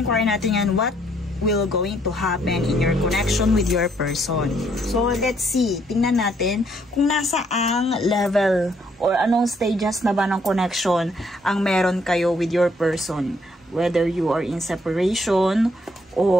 natin yan what will going to happen in your connection with your person. So, let's see. Tingnan natin kung nasa ang level or anong stages na ba ng connection ang meron kayo with your person. Whether you are in separation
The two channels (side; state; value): both; normal; correlation 0.69